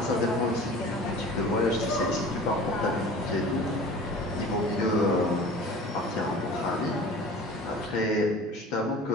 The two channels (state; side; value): normal; both; correlation 0.42